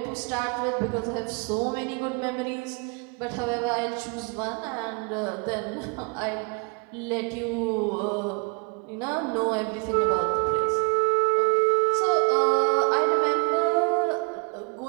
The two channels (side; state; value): left; quieter; 34.0 dB